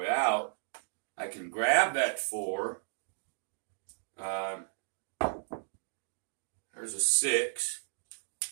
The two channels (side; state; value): left; silent; digital silence